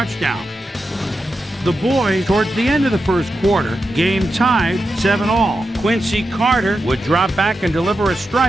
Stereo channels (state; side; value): normal; both; correlation 0.89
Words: The boys, towards the end of the first quarter, game tied 7-all. Quincy Carter would drop back and deliver a